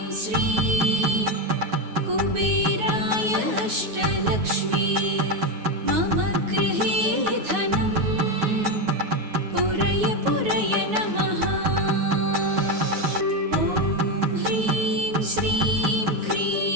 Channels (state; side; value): late; left; 9.4 ms